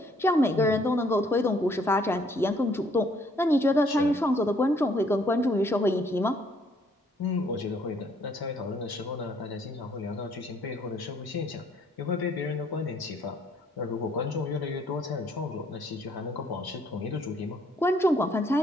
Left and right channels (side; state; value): both; normal; correlation 0.65